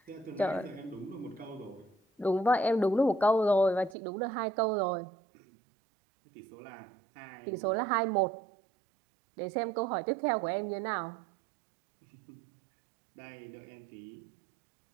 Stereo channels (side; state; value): left; drops out; at 4.0 s